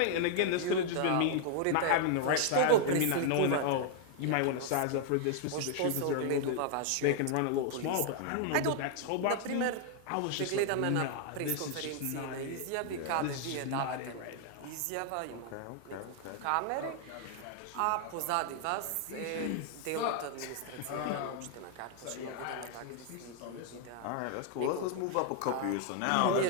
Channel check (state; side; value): different; both; correlation 0.00